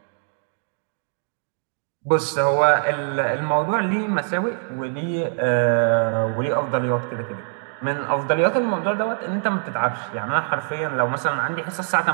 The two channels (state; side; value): silent; left; digital silence